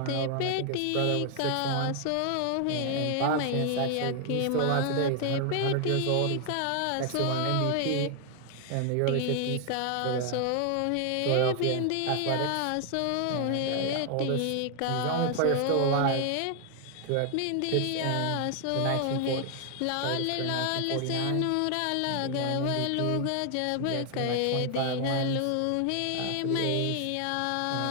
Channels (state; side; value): different; both; correlation 0.00